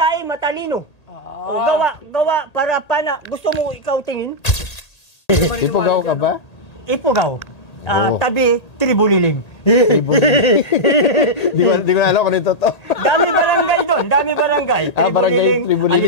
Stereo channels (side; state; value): right; late; 1.8 ms